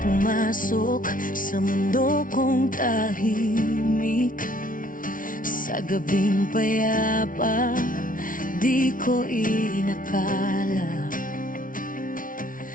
pumasok sa mundo kong tahimik. Sa gabing payapa, di ko inakala.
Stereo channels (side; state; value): right; late; 0.39 ms